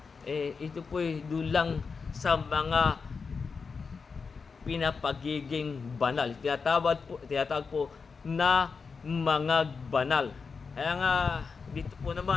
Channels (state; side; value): quieter; right; 5.1 dB